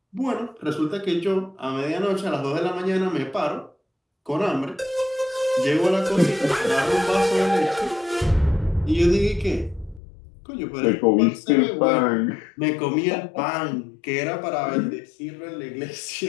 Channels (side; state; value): right; drops out; at 10.0 s